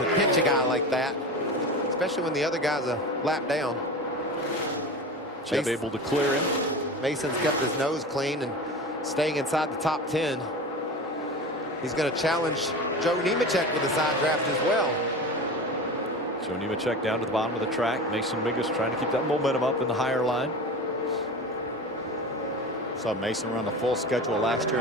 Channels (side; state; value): both; normal; correlation 0.30